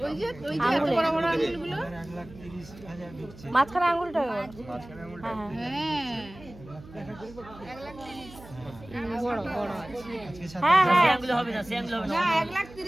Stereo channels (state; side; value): noise; right; hum, 19 dB below the sound